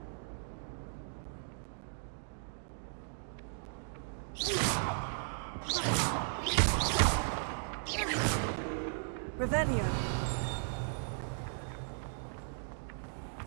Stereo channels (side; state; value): left; silent; digital silence